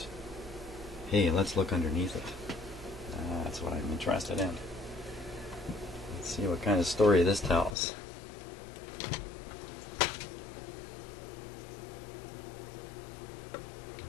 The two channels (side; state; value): right; drops out; at 7.8 s